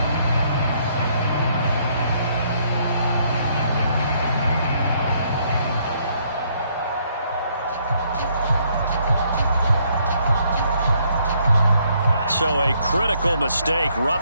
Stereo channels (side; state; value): both; inverted; correlation -0.69